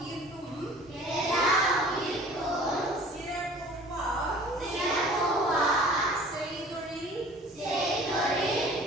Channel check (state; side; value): normal; both; correlation 0.47